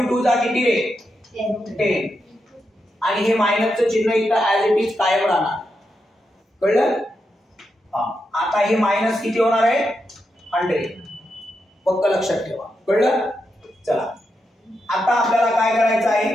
2 चा किती रे 10 आणि हे मायनसचं चिन्ह इथं ऍज इट इज कायम राहणार. कळलं. आता हे मायनस किती होणार आहे 100. पक्क लक्षात ठेवा. कळलं. चला आता आपल्याला काय करायचं आहे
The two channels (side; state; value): both; normal; correlation 0.85